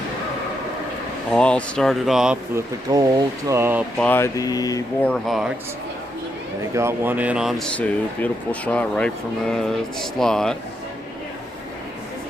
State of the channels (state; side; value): normal; both; correlation 0.80